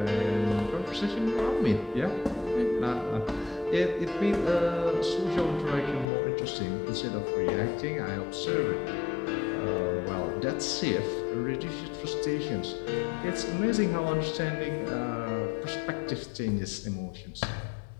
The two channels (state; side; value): drops out; right; at 6.1 s